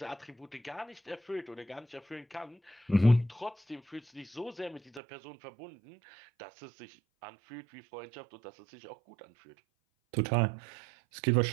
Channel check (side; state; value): left; drops out; at 5.0 s